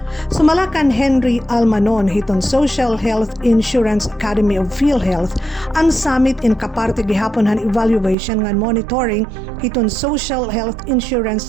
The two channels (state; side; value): drops out; left; at 8.2 s